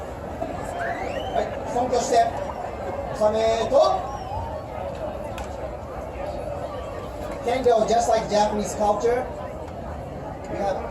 Right, front step. Sameto. Kendo, just like Japanese culture, we have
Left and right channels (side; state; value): both; identical; correlation 1.00